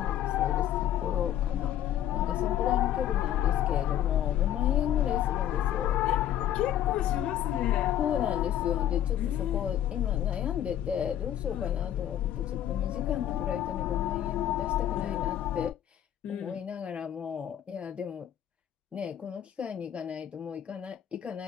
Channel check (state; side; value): quieter; right; 11.1 dB